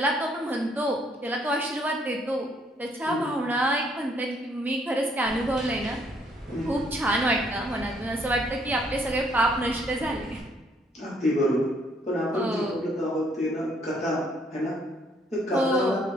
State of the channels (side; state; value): both; normal; correlation 0.67